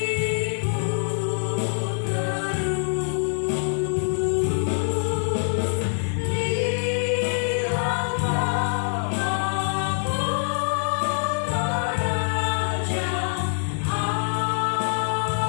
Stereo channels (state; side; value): silent; right; digital silence